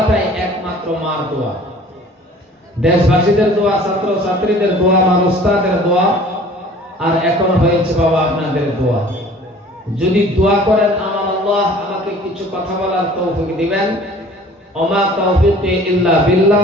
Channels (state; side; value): normal; both; correlation 0.49